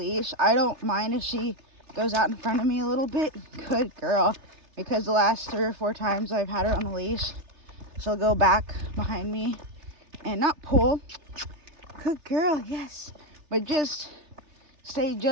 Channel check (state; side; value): late; left; 3.3 ms